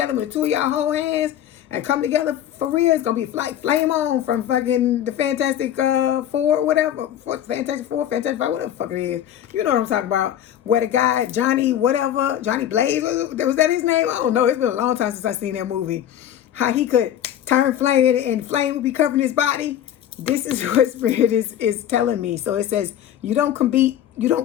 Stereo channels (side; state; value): right; quieter; 10.8 dB